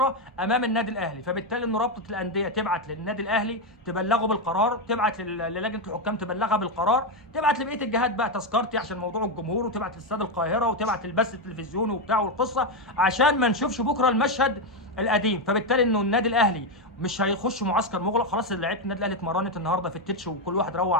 امام النادي الاهلي. فبالتالي انه رابطه الانديه تبعت للنادي الاهلي تبلغه بالقرار، تبعت للجنه الحكام تبلغها بالقرار، تبعت لبقيه الجهات بقى تذكرتي عشان موضوع الجمهور، وتبعت لاستاد القاهره، وتبعت للبث التلفزيوني وبتاع والقصه، عشان ما نشوفش بكره المشهد القديم. فبالتالي انه النادي الاهلي مش هيخش معسكر مغلق، خلاص لعيبه النادي الاهلي اتمرنت النهارده في التتش وكل واحد روح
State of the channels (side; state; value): both; normal; correlation 0.07